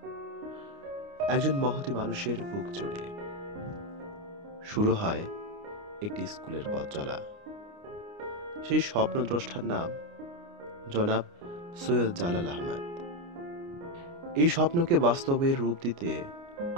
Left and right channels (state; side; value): late; left; 29 ms